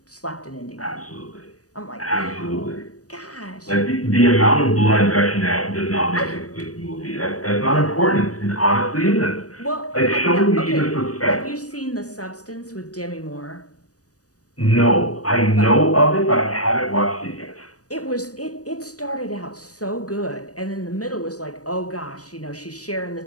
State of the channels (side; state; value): right; late; 0.67 ms